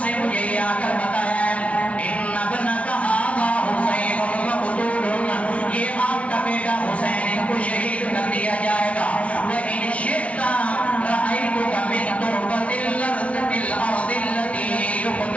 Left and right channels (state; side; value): late; right; 0.064 ms